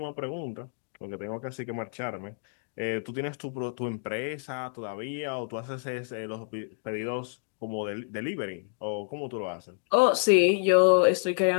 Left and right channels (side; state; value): right; silent; digital silence